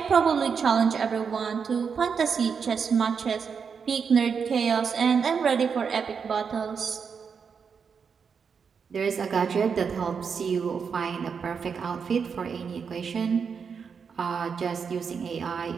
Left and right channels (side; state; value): left; quieter; 6.2 dB